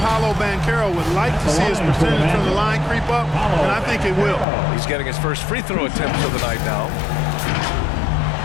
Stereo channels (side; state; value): right; drops out; at 4.5 s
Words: Banchero would like to see his percentage from the line creep up, and I think it will. He's getting his first free throw attempt of the night now.